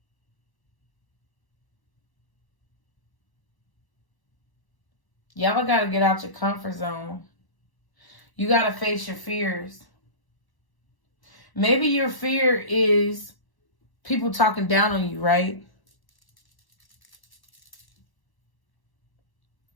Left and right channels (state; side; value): late; right; 1.0 ms